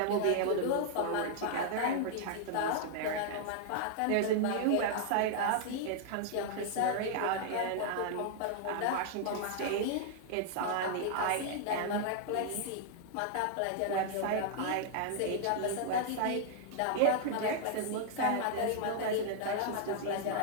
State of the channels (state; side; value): different; both; correlation -0.01